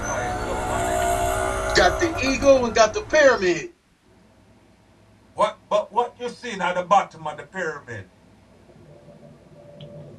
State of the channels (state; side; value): identical; both; correlation 1.00